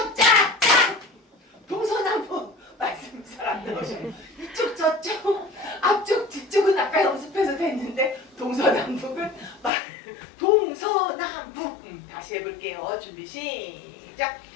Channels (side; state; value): right; drops out; at 9.7 s